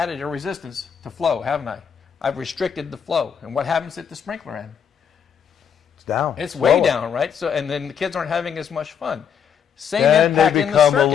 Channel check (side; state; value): right; quieter; 7.6 dB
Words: a resistance to flow, haven't I? I've restricted the flow. And what happens at the sprinkler end? It's down. It's way lower. down, right? So, and then the kids aren't having as much fun. Same And impact they in the become a circuit.